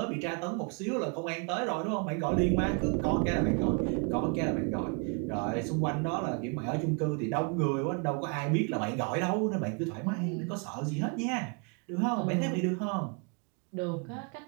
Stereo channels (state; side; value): quieter; left; 34.6 dB